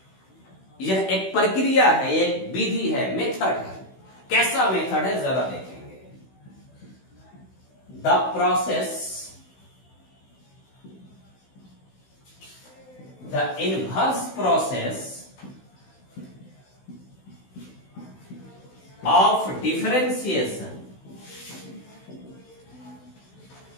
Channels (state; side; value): late; right; 16 ms